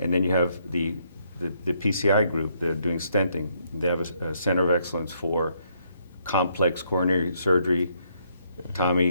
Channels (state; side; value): inverted; both; correlation -0.73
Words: you have the the PCI group. They're doing stenting. They have a center of excellence for complex coronary surgery.